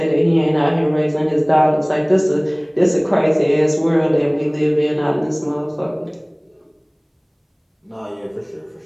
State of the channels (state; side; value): identical; both; correlation 1.00